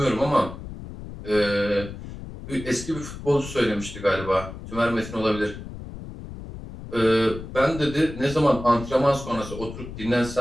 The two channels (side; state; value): left; noise; rumble, 11 dB below the sound